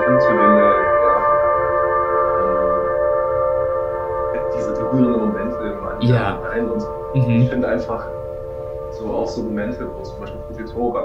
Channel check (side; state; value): both; identical; correlation 1.00